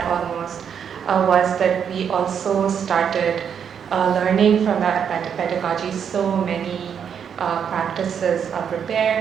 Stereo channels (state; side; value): quieter; left; 7.7 dB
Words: almost, was that we also started learning from that pedagogy so many practices of